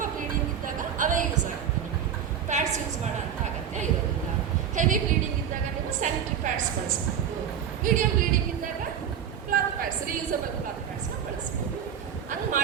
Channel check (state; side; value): quieter; left; 8.6 dB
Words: ಬ್ಲೀಡಿಂಗ್ ಇದ್ದಾಗ ಅವೇ ಯೂಸ್ ಆಗುತ್ತೆ. ನಿಮಗೆ ಪ್ಯಾಡ್ಸ್ ಯೂಸ್ ಮಾಡೋ ಅಂತ ಅಗತ್ಯ ಇರೋದಿಲ್ಲ. ಹೆವಿ ಬ್ಲೀಡಿಂಗ್ ಇದ್ದಾಗ ನೀವು ಸ್ಯಾನಿಟರಿ ಪ್ಯಾಡ್ಸ್ ಬಳಸ್ಬೋದು. ಮೀಡಿಯಂ ಬ್ಲೀಡಿಂಗ್ ಇದ್ದಾಗ ಕ್ಲಾತ್ ಪ್ಯಾಡ್ಸ್, ರೀಯೂಸಬಲ್ ಕ್ಲಾತ್ ಪ್ಯಾಡ್ಸ್ನ ಬಳಸ್ಬೋದು. ಹಂಗೆ